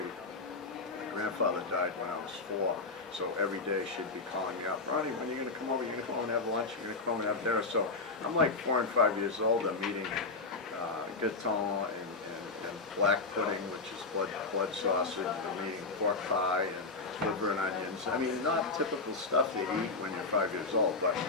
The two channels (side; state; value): right; quieter; 3.8 dB